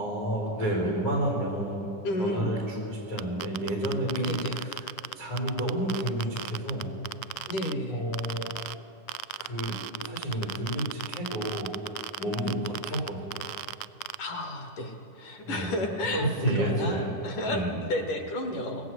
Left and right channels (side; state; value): right; late; 9.7 ms